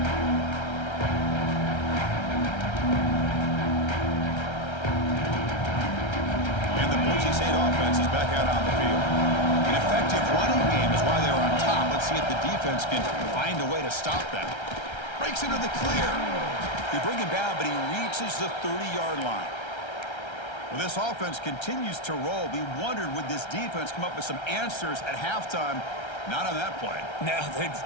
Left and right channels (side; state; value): right; late; 1.3 ms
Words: And the Boise State offense is back out on the field. An effective running game is why they're on top. Let's see if the defense can find a way to stop that. Breaks into the clear. They bring him down, but he reaches the 30-yard line. Well, this offense continues to roll. We wondered, would this defense come up with some answers at halftime? Not on that play. Now,